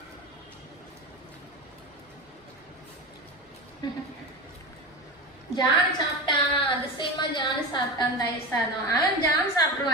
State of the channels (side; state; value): both; normal; correlation 0.25